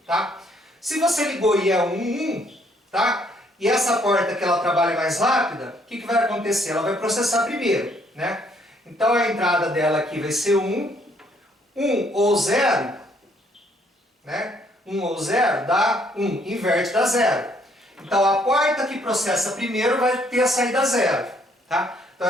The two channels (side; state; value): both; normal; correlation 0.67